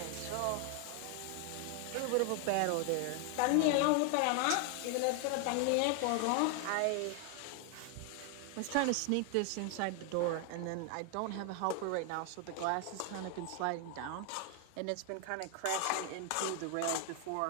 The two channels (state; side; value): different; both; correlation 0.00